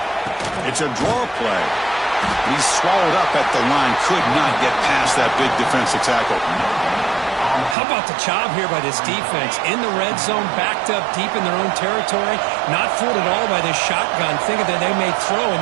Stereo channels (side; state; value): left; drops out; at 7.8 s